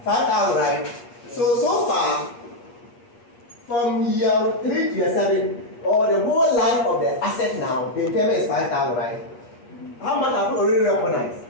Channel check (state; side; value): late; right; 8.4 ms